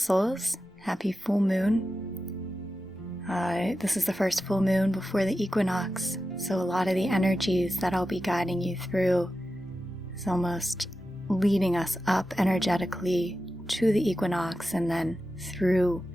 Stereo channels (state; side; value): normal; both; correlation 0.92